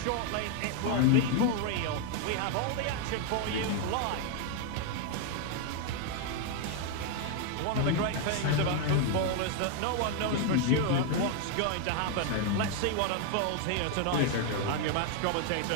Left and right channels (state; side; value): different; both; correlation 0.01